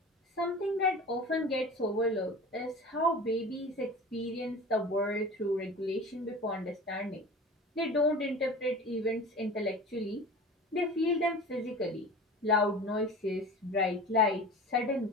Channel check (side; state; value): both; normal; correlation 0.36